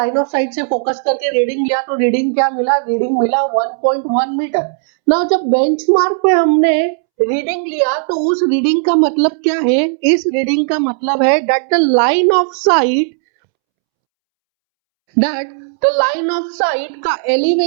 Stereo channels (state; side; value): silent; left; 70 dB below the other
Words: ऑफ साइट से फोकस करके रीडिंग लिया, तो रीडिंग क्या मिला, रीडिंग मिला 1.1 मीटर। ना जब बेंचमार्क पे हमने रीडिंग लिया तो उस रीडिंग का मतलब क्या है, इस रीडिंग का मतलब है that the line of sight, that the line of sight का